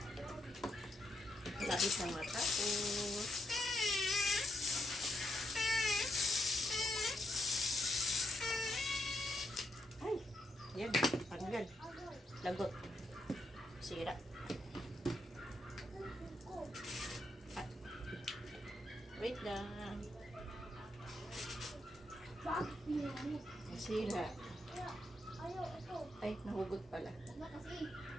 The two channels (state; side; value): normal; both; correlation 0.81